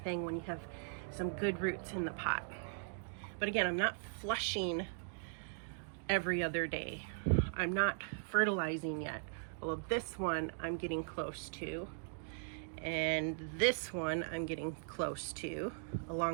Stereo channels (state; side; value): silent; left; digital silence